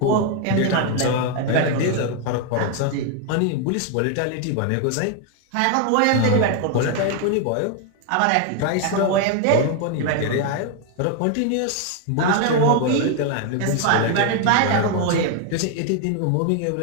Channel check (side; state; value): both; different; correlation 0.01